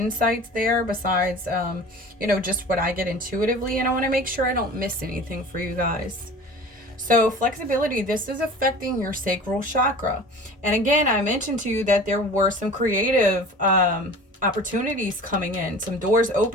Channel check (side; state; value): both; normal; correlation 0.40